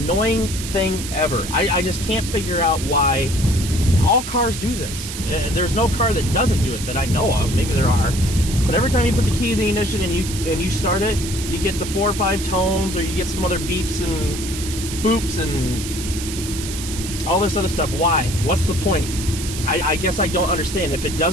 thing ever. I just can't figure out why. All cars do this. There's no car that doesn't do it that I know of. Maybe there are. But every time you put the key in the ignition and you start it, you get the 4 or 5 tones, or you get some other beeps and boops and all this other stuff. Why? What's the point? I guess I don't understand. If it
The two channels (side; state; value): right; noise; hiss, 8 dB below the sound